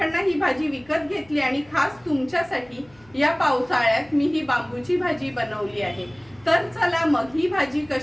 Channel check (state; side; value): noise; left; hum, 29 dB below the sound